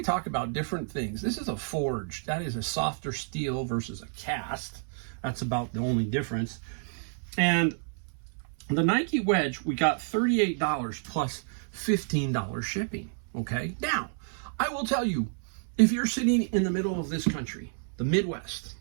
talk about different things. This is a forged. That is a softer steel versus a cast. That's about the only difference. And the Nike wedge, we got $38 plus $15 shipping. Okay, now I will tell you, if you're sitting in the middle of this country, the Midwest,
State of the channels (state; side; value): silent; left; 58 dB below the other